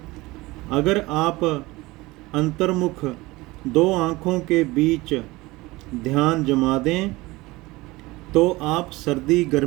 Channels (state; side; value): quieter; left; 21.1 dB